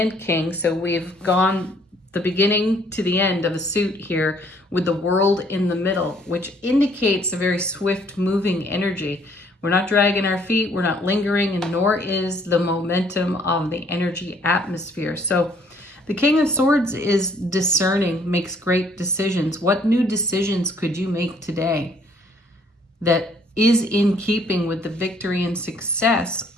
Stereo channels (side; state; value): both; normal; correlation 0.62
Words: King. So we've gone the beginning to the end of a suit here with the World in the middle, which indicates a very swift moving energy. We're not dragging our feet, we're not lingering, and nor is the momentum of the energy atmosphere. So the King of Swords is discerning, makes great decisions. What new decisions could you make today that is in keeping with the victory and success